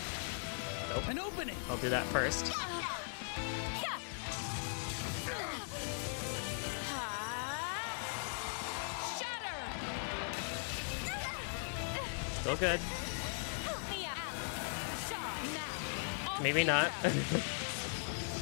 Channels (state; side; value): silent; right; digital silence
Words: Nope. An opening. I'll do that first. Shatter. Still good. Help me out. Now. Maybe not.